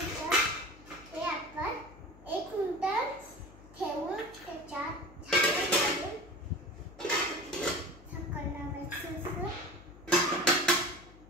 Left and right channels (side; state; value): left; noise; hum, 21 dB below the sound